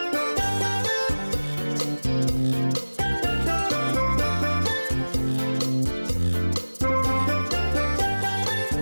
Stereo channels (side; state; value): both; inverted; correlation -1.00